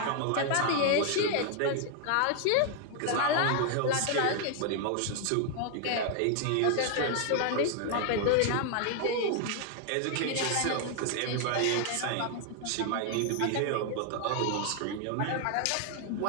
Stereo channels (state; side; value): different; both; correlation 0.00